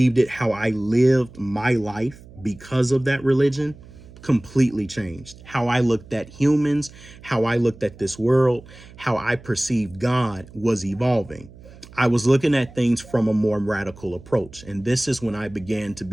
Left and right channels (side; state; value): right; noise; hum, 20 dB below the sound